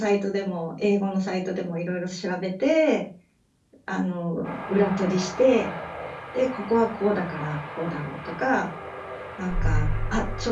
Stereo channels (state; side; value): identical; both; correlation 1.00